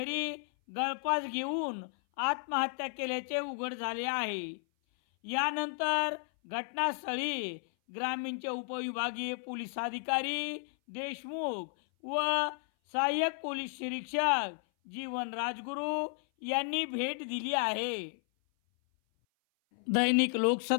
गळफास घेऊन आत्महत्या केल्याचे उघड झाले आहे। यानंतर घटनास्थळी ग्रामीणचे उपविभागीय पोलीस अधिकारी देशमुख व सहाय्यक पोलीस निरीक्षक जीवन राजगुरू यांनी भेट दिली आहे। दैनिक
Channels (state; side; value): silent; right; 56 dB below the other